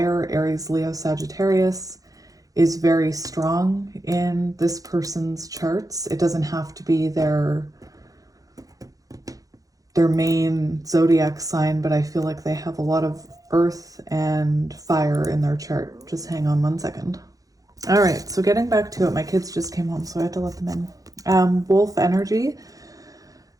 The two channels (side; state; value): left; late; 0.17 ms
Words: Aries, Leo, Sagittarius, is very strong in this person's charts. It doesn't have to be their main zodiac sign, but I feel like they have a lot of earth and fire in their chart. Just hang on one second. All right, so getting back to it, my kids just came home, so I had to let them in. Wolf energy.